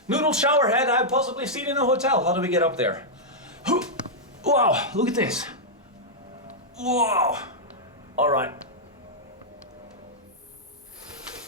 noodle shower head I've possibly seen in a hotel. How do we get up there? Wow, look at this. Wow. All right.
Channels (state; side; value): normal; both; correlation -0.07